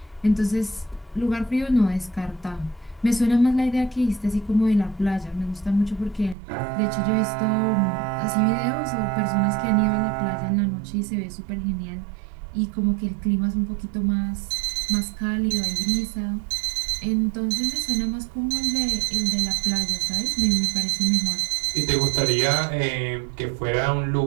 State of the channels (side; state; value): left; drops out; at 6.4 s